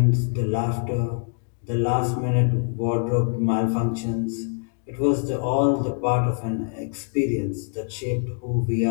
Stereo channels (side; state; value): right; silent; 59 dB below the other